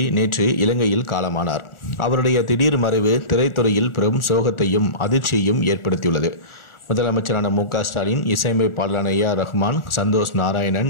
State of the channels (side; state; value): right; late; 1.4 ms